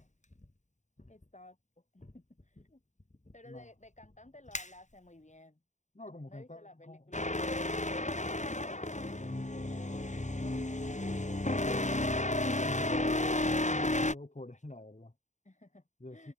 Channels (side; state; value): right; late; 0.34 ms